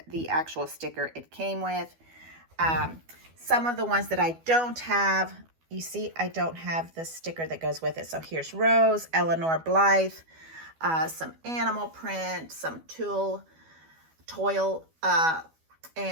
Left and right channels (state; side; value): late; left; 12 ms